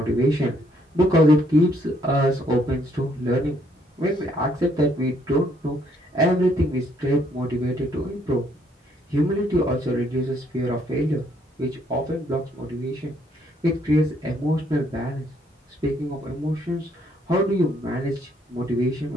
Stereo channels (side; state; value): both; normal; correlation 0.68